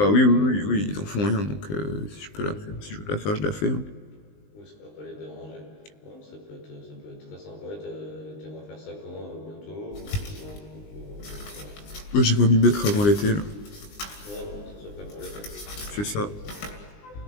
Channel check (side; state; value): right; late; 20 ms